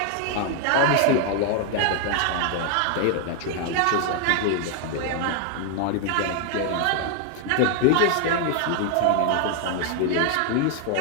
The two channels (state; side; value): different; both; correlation 0.00